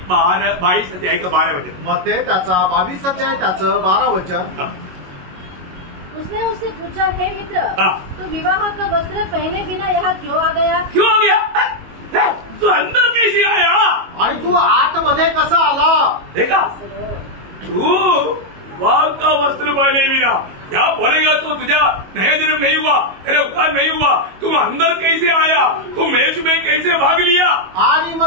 22 अध्याय का 12 वचन। मग ते त्याचा 22 अध्याय त्याचं 12 वचन। उसने उससे पूछा, हे मित्र, हाँ। तू विवाह का वस्त्र पहने बिना यहाँ क्यों आ गया? क्यों आ गया? तू अंदर कैसे आया? आणि तू आतमध्ये कसा आला? देखा, तू विवाह का वस्त्र पहने बिना क्या बोलेगा, तो तुझा नया जन्म नहीं हुआ, तेरे उपकार नहीं हुआ, तुम अंदर कैसे आया, तू मेज में कैसे भाग लिया? आणि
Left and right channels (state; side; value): late; left; 22 ms